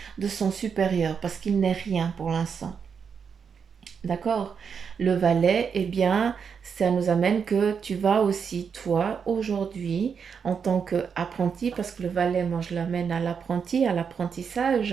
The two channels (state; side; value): quieter; left; 6.5 dB